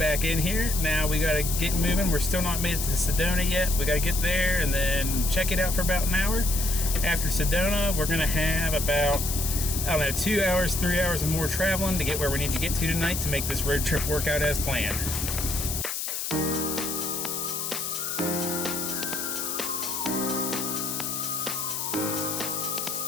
in here. Now we gotta get moving. We're still not made it to Sedona yet. We gotta get there and then check it out for about an hour. After Sedona, we're gonna have about, I don't know, 2 hours, 3 hours of more traveling to get where we need to get to tonight to make this road trip work out as planned.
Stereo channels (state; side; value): noise; left; hiss, 3 dB below the sound